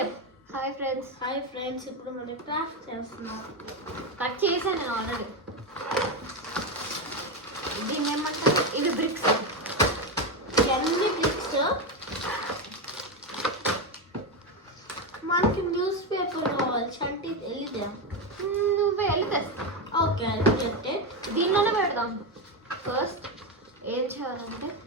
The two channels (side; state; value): both; normal; correlation 0.11